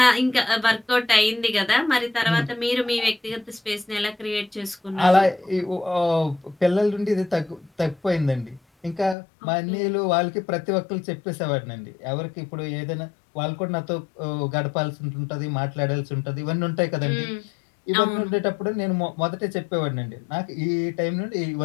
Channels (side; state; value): right; drops out; at 9.2 s